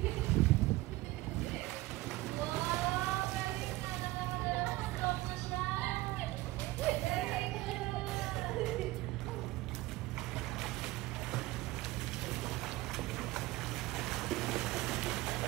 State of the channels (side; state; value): left; quieter; 19.1 dB